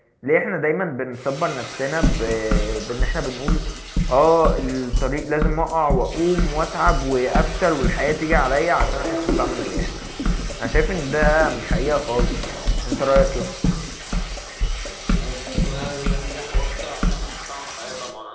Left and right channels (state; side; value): identical; both; correlation 1.00